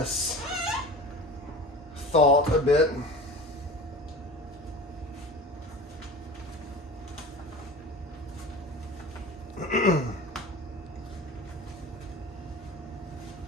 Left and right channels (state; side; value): normal; both; correlation 0.36